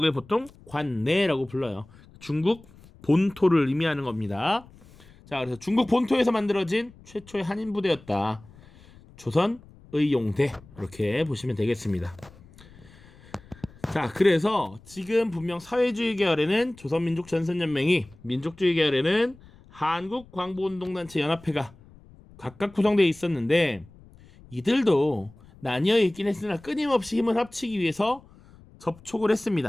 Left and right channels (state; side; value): noise; left; rumble, 24 dB below the sound